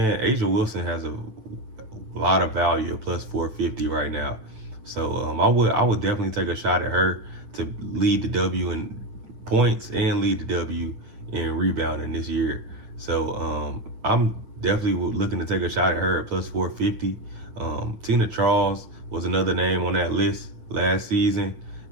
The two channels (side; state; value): left; late; 9.3 ms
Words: A'ja Wilson has a lot of value at plus 450 right now. So I would definitely take a shot at her to lead the W in points and lead the W in rebounding this year. So I'm definitely looking to take a shot at her at plus 450. Tina Charles was another name on that list last season